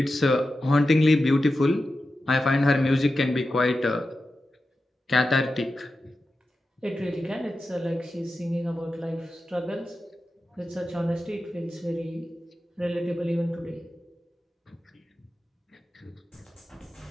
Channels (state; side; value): normal; both; correlation 0.92